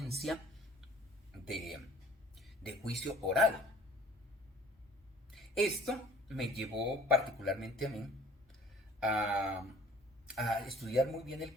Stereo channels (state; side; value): normal; both; correlation 0.51